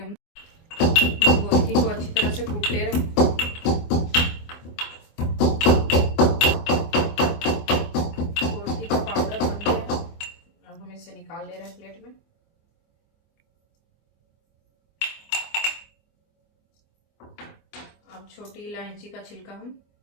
हम गोलकी को अच्छी तरह से कूट ले रहे हैं। गोलकी का पाउडर बन गया। अब हम इसे निकाल ले रहे हैं प्लेट में। अब छोटी इलायची का छिलका हम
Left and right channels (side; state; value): right; late; 24 ms